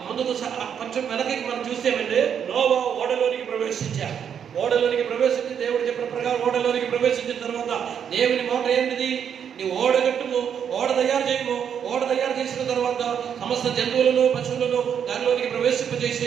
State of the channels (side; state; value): left; quieter; 8.1 dB